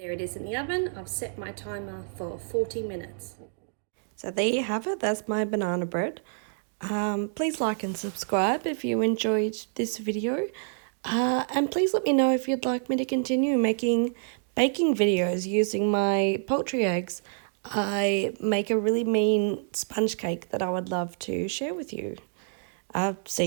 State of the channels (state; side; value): silent; left; digital silence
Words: it is in the oven. I've set my timer for 40 minutes. So there you have it, that's my banana bread. Please like and subscribe if you enjoyed this video. And please let me know if you'd like me to continue making baking videos using my poultry eggs. I make a really mean sponge cake that I would love to share with you. See